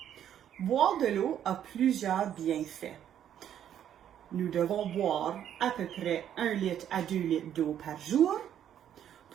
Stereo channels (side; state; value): left; quieter; 10.1 dB